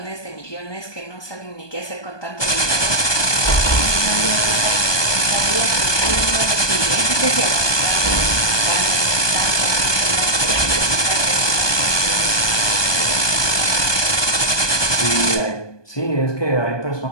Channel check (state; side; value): late; right; 1.2 ms